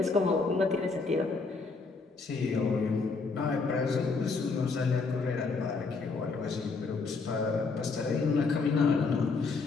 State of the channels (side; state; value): right; quieter; 4.3 dB